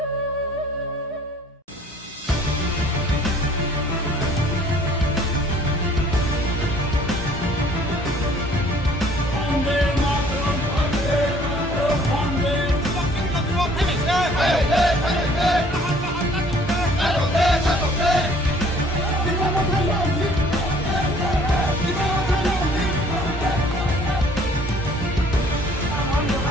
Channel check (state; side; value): normal; both; correlation 0.56